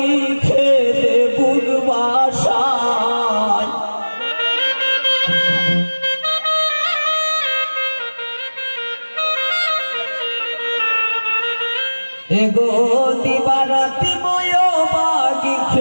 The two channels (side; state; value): both; inverted; correlation -1.00